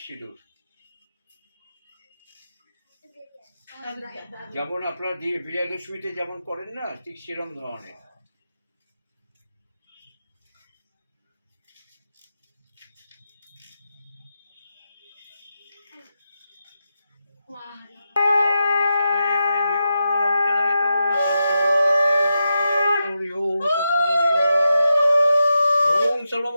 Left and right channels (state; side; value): inverted; both; correlation -0.87